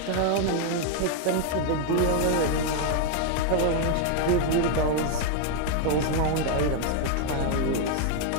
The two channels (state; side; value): different; both; correlation 0.00